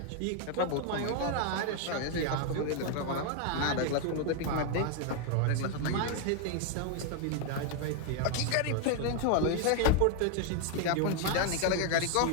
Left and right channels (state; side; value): different; both; correlation 0.00